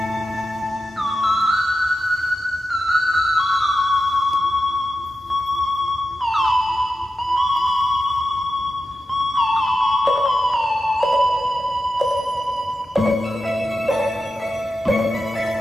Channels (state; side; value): normal; both; correlation 0.90